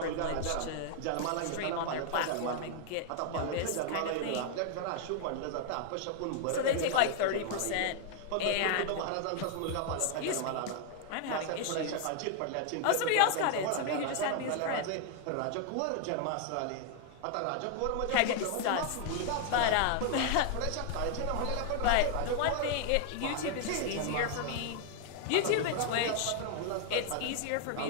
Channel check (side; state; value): both; different; correlation 0.00